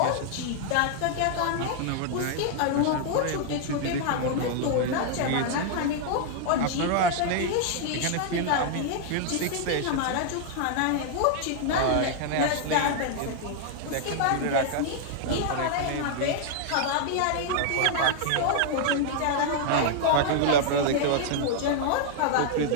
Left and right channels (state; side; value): different; both; correlation -0.01